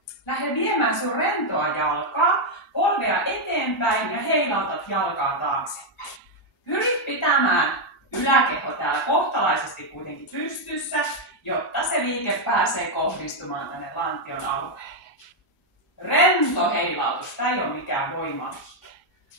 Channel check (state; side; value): normal; both; correlation 0.01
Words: lähde viemään sun rentoa jalkaa, polvea eteenpäin ja heilautat jalkaa taaksepäin. Pyri pitämään yläkeho täällä kohtalaisesti kuitenkin pystyssä, jotta se liike pääsee kohdistumaan tänne lantion alueelle. Rento heilautus, tämä ei ole mikään voimaliike.